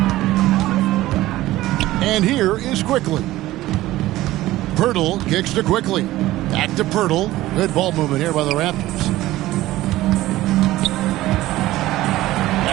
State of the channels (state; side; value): quieter; left; 16.3 dB